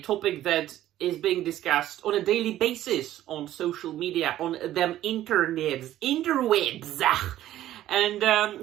topic that is being discussed on a daily basis on social media, on them interwebs. And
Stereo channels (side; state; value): left; quieter; 13.3 dB